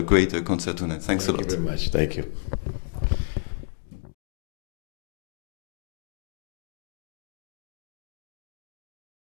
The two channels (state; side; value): silent; right; digital silence